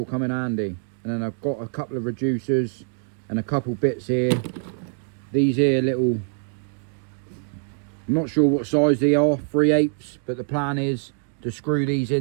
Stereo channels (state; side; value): silent; left; digital silence